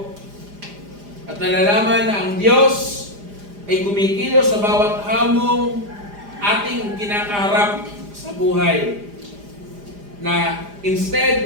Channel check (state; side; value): late; left; 4.9 ms